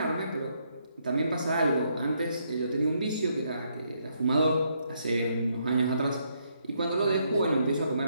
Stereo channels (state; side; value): inverted; both; correlation -0.75